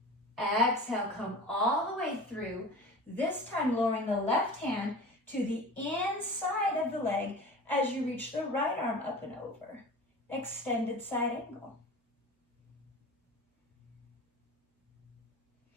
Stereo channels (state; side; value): normal; both; correlation 0.36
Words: Exhale, come all the way through, this time lowering the left hand to the inside of the leg as you reach the right arm up and over. Extended side angle.